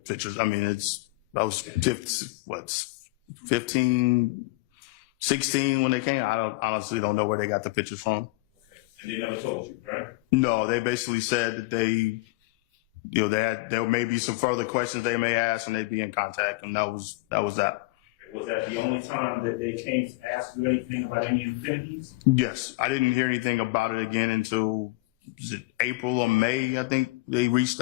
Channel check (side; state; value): right; quieter; 22.2 dB